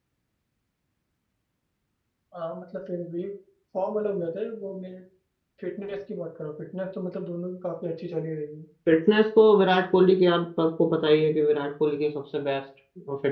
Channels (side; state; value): both; identical; correlation 1.00